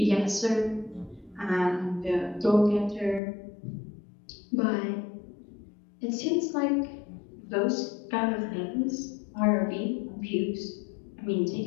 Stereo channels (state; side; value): drops out; right; at 3.2 s